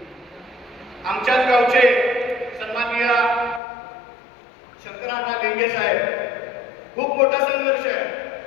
आमच्याच गावचे सन्माननीय शंकरांना लिंगे साहेब, खूप मोठा संघर्ष आहे,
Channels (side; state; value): right; drops out; at 3.6 s